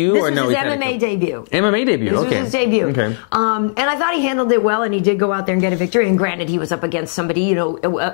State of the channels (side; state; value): right; silent; digital silence